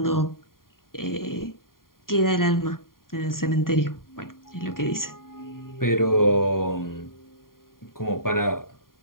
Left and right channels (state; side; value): late; right; 0.91 ms